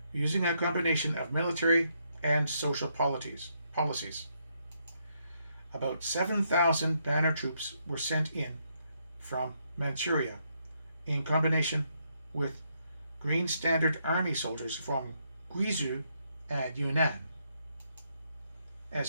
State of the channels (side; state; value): both; inverted; correlation -0.76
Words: using a combination of military and social policies. About 7,000 banner troops were sent in from Manchuria in combination with Green Standard Army soldiers from Guizhou and Yunnan.